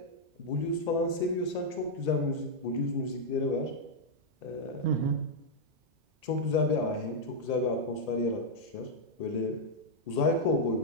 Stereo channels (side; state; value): left; late; 1.8 ms